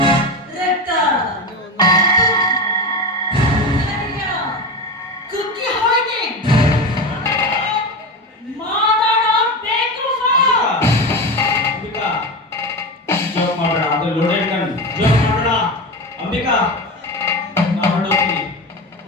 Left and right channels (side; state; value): both; normal; correlation 0.22